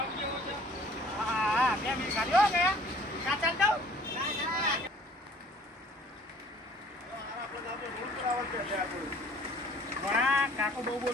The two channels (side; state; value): both; normal; correlation 0.53